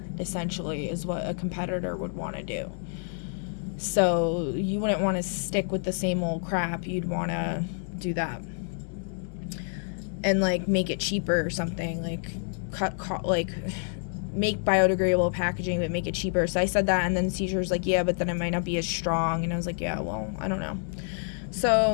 essentially, is what a competitor would want to do. So you wouldn't want to stick with the same old crap. You'd want to do that. And, like, make it cheaper or something. Like, make biodegradable packaging, but make it cheaper. So I said that, and then the teacher was like, yeah, but then it might not be as strong. And I was like, yeah, well, I don't know.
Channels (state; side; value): silent; right; 59 dB below the other